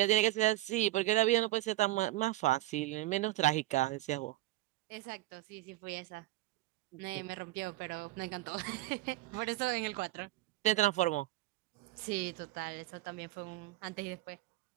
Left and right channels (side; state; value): left; quieter; 17.0 dB